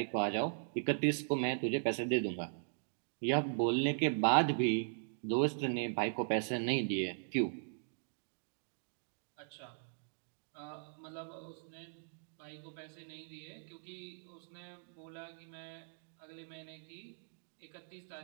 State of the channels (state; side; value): silent; left; digital silence